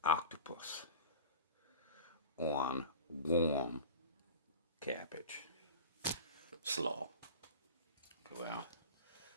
octopus on warm cabbage. Slaw. Well,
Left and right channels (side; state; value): both; inverted; correlation -0.34